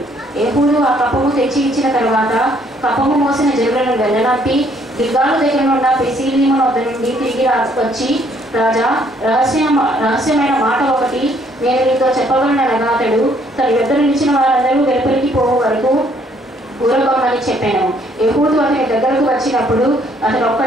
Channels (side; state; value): both; normal; correlation 0.65